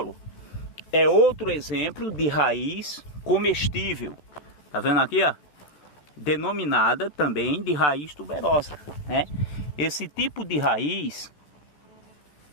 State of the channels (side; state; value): right; late; 13 ms